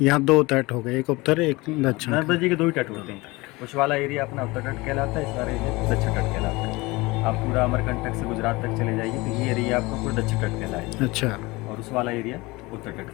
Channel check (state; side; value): quieter; right; 22.7 dB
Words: यहाँ 2 तट हो गए, एक उत्तर एक दक्षिण। नर्मदा जी के 2 ही तट होते हैं। उस वाला एरिया अपना उत्तर तट कहलाता है, इस वाला एरिया दक्षिण तट कहलाता है। आप पूरा अमरकंटक से गुजरात तक चले जाइए तो ये एरिया आपको पूरा दक्षिण तट कहलाएगा, अच्छा, और उस वाला एरिया उत्तर तट